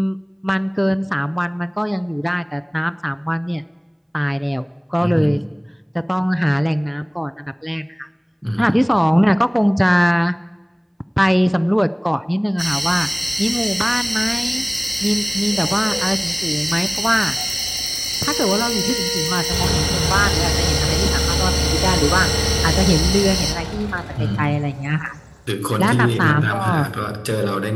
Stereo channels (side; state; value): both; identical; correlation 1.00